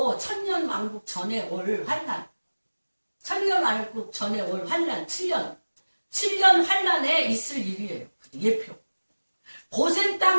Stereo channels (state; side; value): inverted; both; correlation -1.00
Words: 천년왕국 전에 올 환란. 천년왕국 전에 올 환란 7년 환란에 있을 일이에요. 예표. 고센